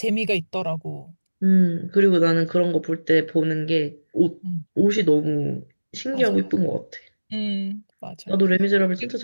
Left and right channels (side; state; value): both; inverted; correlation -1.00